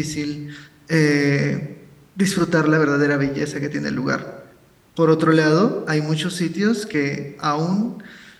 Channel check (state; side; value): identical; both; correlation 1.00